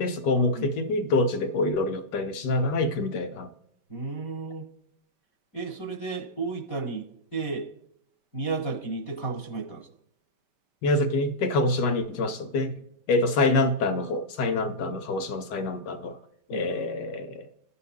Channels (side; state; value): right; late; 5.1 ms